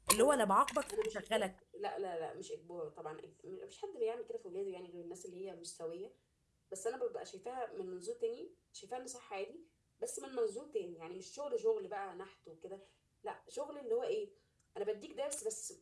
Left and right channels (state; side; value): identical; both; correlation 1.00